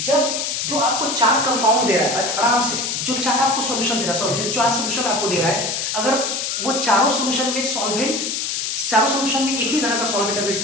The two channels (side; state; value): left; noise; hiss, 2 dB below the sound